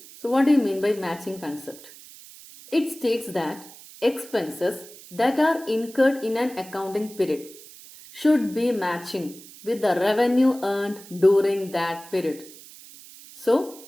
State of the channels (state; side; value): noise; right; hiss, 19 dB below the sound